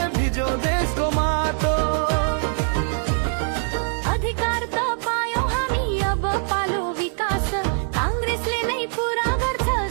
भिजो देशको माटो अधिकार त पायौं हामी अब पालो विकास काङ्ग्रेसले नै पुरा गर्छ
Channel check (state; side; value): silent; left; digital silence